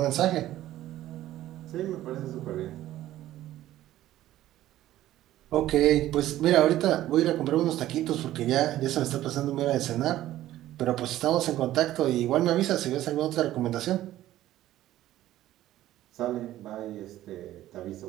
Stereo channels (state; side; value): quieter; left; 14.1 dB